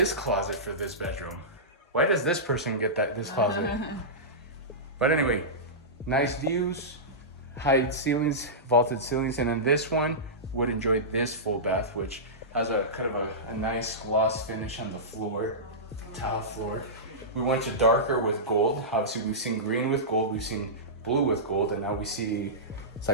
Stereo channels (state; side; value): normal; both; correlation -0.17